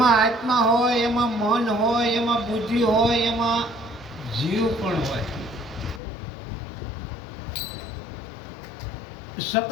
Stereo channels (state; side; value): drops out; right; at 6.0 s